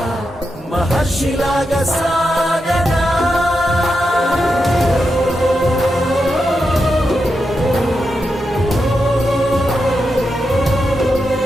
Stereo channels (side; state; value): both; normal; correlation 0.87